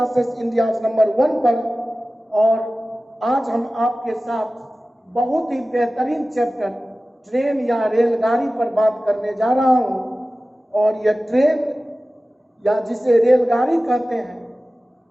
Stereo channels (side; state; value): both; normal; correlation 0.96